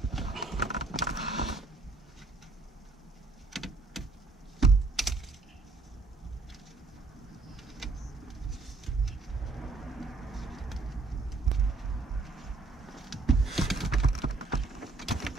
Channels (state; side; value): quieter; left; 3.7 dB